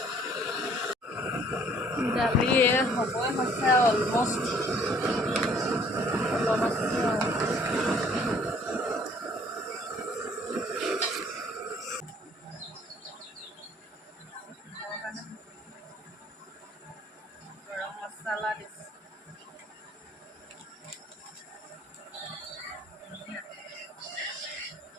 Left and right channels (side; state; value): both; normal; correlation 0.58